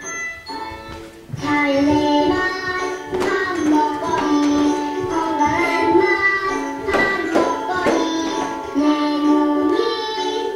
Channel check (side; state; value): both; identical; correlation 1.00